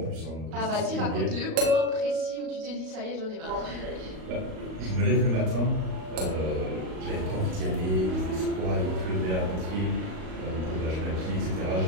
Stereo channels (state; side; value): late; left; 38 ms